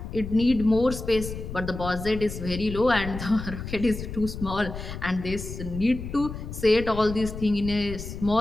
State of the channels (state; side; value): noise; left; rumble, 8 dB below the sound